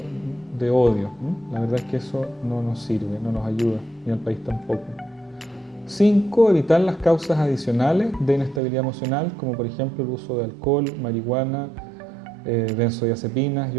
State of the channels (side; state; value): left; drops out; at 8.6 s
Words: de odio. La verdad es que eso no nos sirve, no nos ayuda, ni al país tampoco. 5. Evitar las causas adicionales de inestabilidad emocional, como por ejemplo el uso de alcohol, marihuana, benzodiazepinas